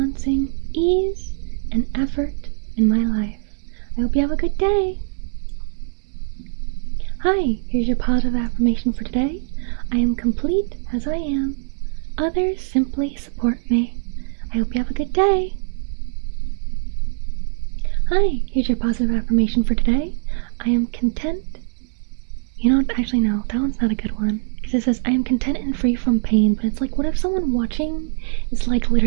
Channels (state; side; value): silent; left; digital silence